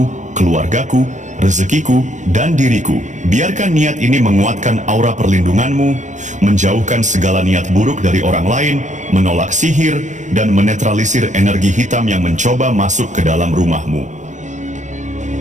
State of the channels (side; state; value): left; late; 0.35 ms